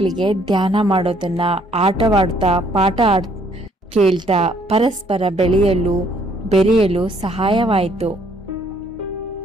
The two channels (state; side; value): normal; both; correlation 0.65